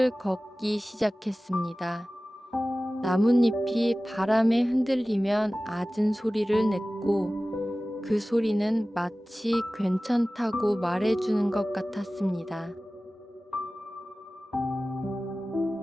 걷기 시작했습니다. 나뭇잎이 바람에 흔들리면 잦은 소리를 냈고, 그 소리는 마치 괜찮다고 말해주는 것 같았습니다.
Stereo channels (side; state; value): both; normal; correlation 0.97